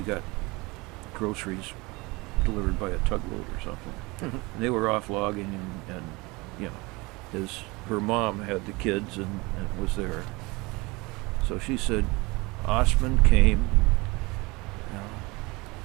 got groceries delivered by a tugboat or something. And they were off logging, and her mom had the kids and was there. So she said Ostman came.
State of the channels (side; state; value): left; quieter; 24.3 dB